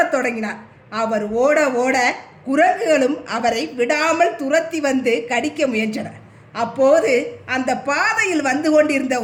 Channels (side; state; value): both; identical; correlation 1.00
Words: தொடங்கினார். அவர் ஓட ஓட குரங்குகளும் அவரை விடாமல் துரத்தி வந்து கடிக்க முயன்றன. அப்போது அந்த பாதையில் வந்து கொண்டிருந்த